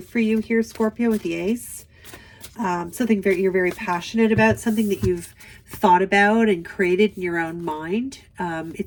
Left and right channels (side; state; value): both; identical; correlation 1.00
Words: for you here, Scorpio, with the Ace. Something you're very passionate about, something that you've thought about and created in your own mind.